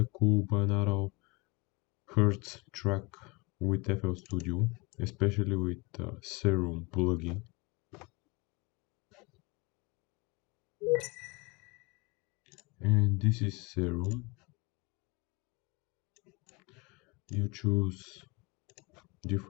cool binaural hertz track with FL Studio, especially with Serum plugin. And this is Serum. You choose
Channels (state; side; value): quieter; right; 27.0 dB